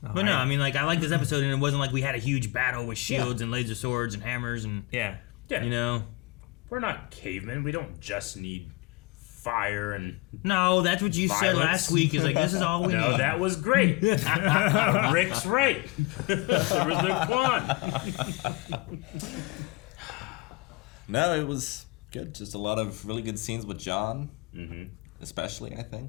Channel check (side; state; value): right; quieter; 24.4 dB